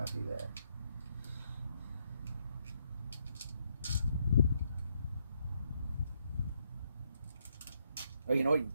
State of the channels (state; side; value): inverted; both; correlation -0.76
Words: that. Oh, you know what? You